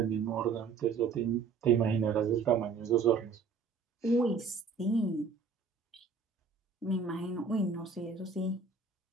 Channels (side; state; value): left; quieter; 5.1 dB